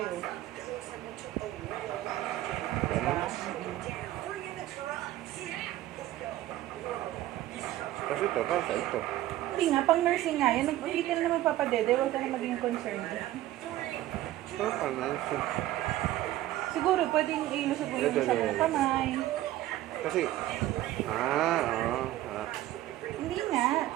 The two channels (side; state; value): left; quieter; 14.7 dB